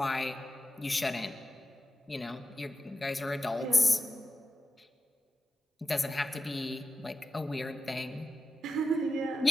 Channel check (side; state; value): both; normal; correlation 0.92